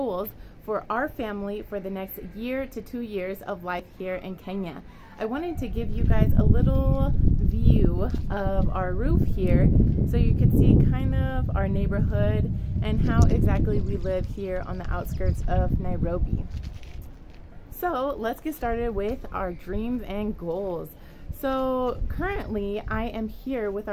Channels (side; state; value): both; identical; correlation 1.00